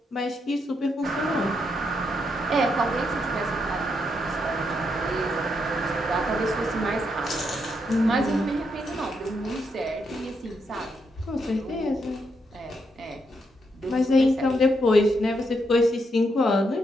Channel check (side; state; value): both; normal; correlation 0.79